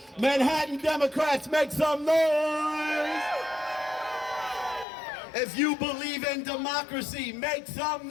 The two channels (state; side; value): drops out; right; at 4.9 s